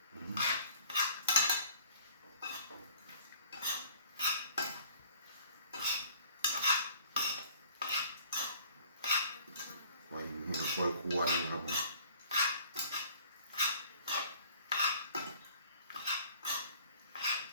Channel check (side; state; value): both; inverted; correlation -0.52